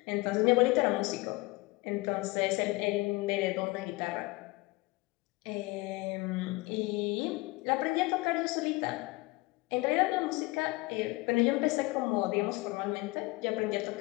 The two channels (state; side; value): quieter; right; 23.1 dB